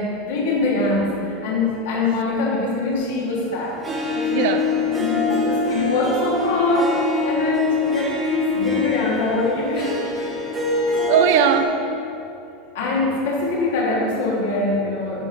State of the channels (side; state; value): both; normal; correlation 0.10